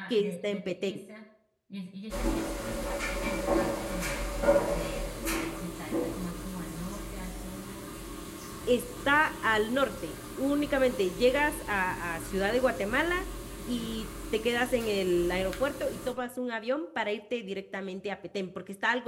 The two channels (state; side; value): identical; both; correlation 1.00